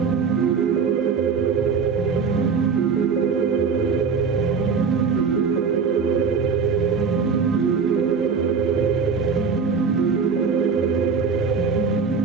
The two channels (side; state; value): left; quieter; 5.5 dB